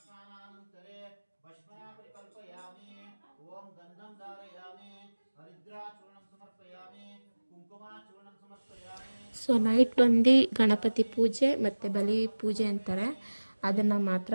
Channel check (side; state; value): both; inverted; correlation -1.00